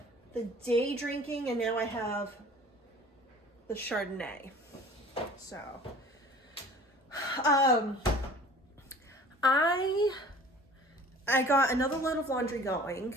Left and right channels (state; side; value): normal; both; correlation 0.46